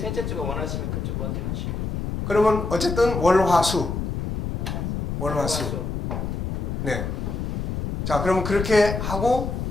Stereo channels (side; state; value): left; noise; rumble, 3 dB below the sound